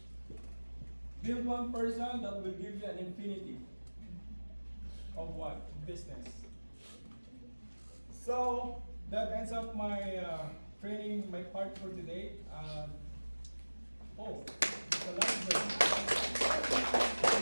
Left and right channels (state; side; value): inverted; both; correlation -1.00